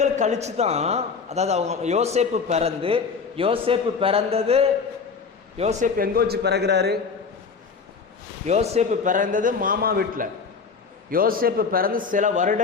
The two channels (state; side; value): quieter; right; 5.3 dB